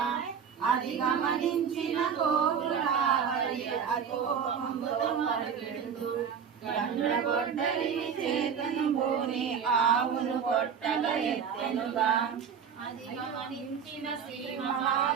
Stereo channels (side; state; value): left; quieter; 7.2 dB